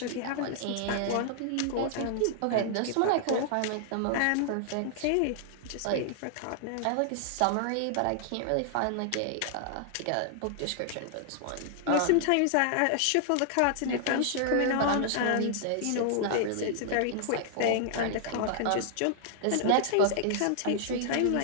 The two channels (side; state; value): both; different; correlation -0.01